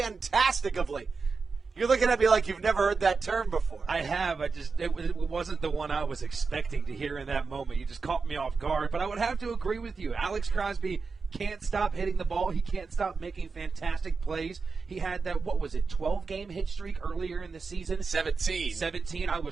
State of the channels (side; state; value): left; quieter; 4.7 dB